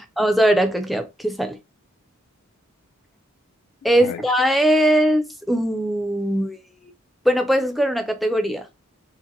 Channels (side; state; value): both; normal; correlation 0.84